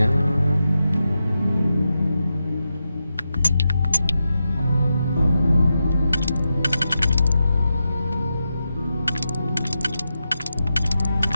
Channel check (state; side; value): inverted; both; correlation -0.89